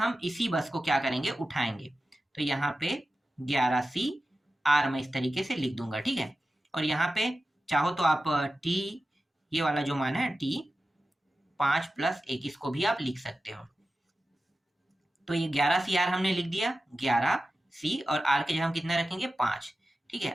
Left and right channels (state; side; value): normal; both; correlation 0.93